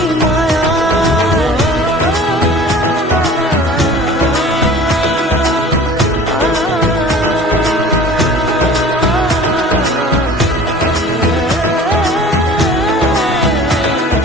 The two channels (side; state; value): both; normal; correlation 0.45